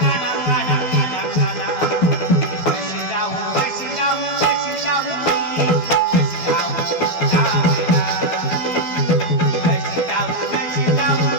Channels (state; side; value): late; right; 12 ms